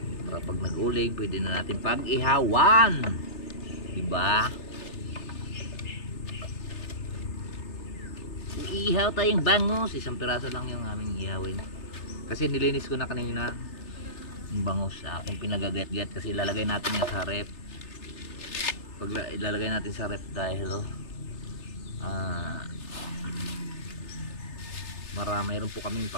Para pag nag-uling, pwede na natin pag-ihawan. Diba? Iihaw tayong bangus. Isang piraso lang yung aming ihawin. Kasi nilinis ko na kanina yung bangus sa aking pinagagat-gat. Kasi ilalagay natin yan sa rep. Pag ilalagay natin sa rep dahil Mayroon po kaming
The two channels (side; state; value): right; late; 3.4 ms